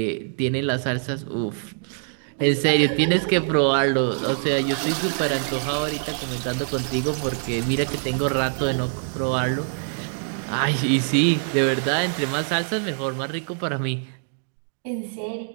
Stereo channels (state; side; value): silent; left; digital silence